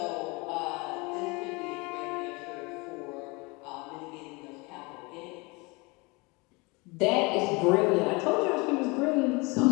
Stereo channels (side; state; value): right; quieter; 26.9 dB